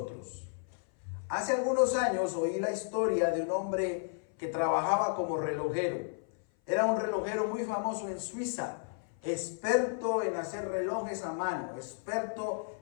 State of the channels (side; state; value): right; silent; 56 dB below the other